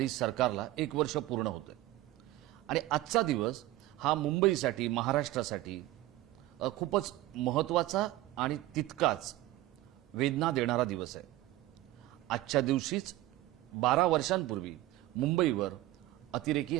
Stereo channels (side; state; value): left; quieter; 16.4 dB